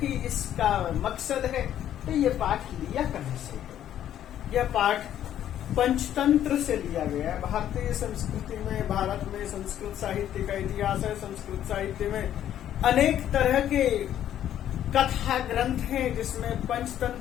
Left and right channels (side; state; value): right; quieter; 11.0 dB